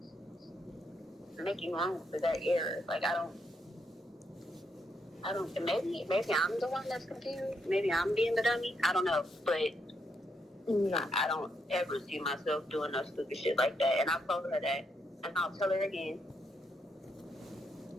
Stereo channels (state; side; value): normal; both; correlation 0.78